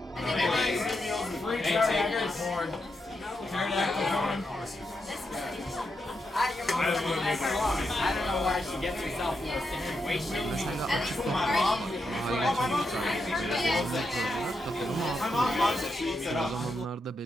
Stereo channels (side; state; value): both; normal; correlation 0.84